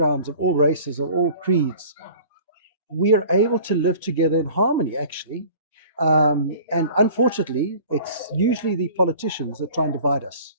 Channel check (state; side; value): inverted; both; correlation -0.45